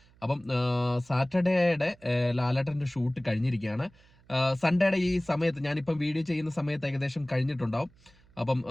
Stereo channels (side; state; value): right; noise; hum, 29 dB below the sound